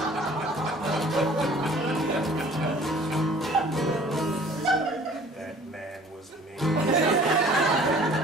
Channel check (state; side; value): normal; both; correlation 0.51